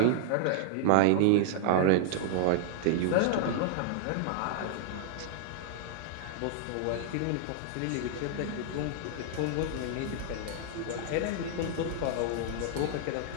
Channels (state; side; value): different; both; correlation -0.01